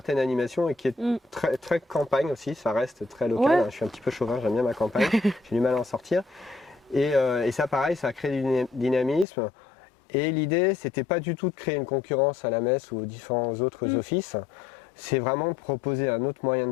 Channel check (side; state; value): right; drops out; at 9.2 s